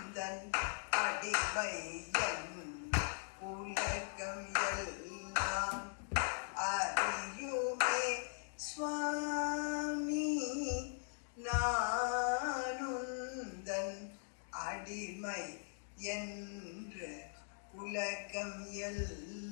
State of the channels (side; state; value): right; silent; digital silence